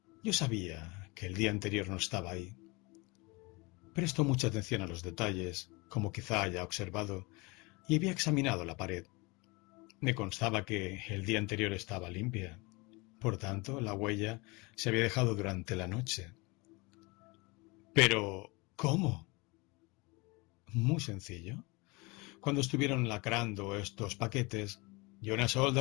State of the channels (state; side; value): quieter; right; 26.2 dB